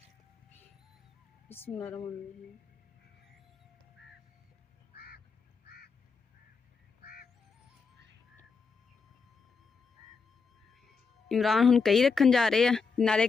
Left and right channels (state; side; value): quieter; right; 5.0 dB